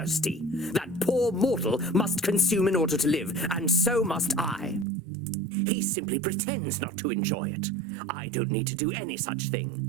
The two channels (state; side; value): drops out; left; at 4.9 s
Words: That poor mortal must consume in order to live, and so must I. He simply pretends not to enjoy it. I don't need to do any such thing.